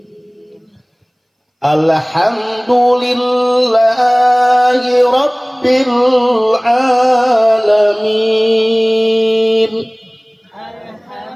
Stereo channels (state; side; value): identical; both; correlation 1.00